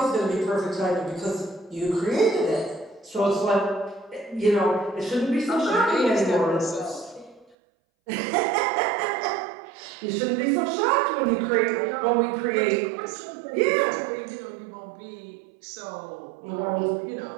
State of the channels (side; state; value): left; drops out; at 7.6 s